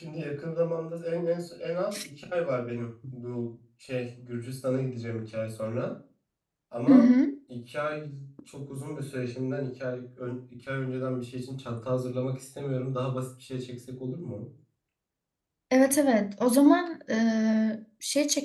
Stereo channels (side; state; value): both; identical; correlation 1.00